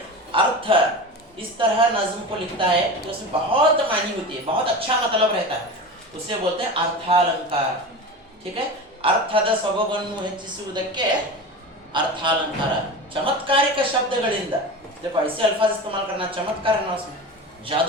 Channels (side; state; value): both; normal; correlation 0.29